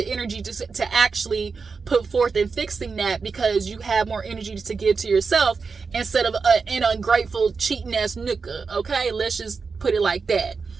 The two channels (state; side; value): quieter; left; 4.9 dB